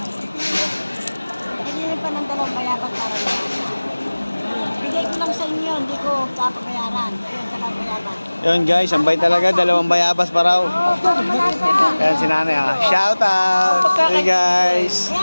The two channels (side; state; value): both; inverted; correlation -1.00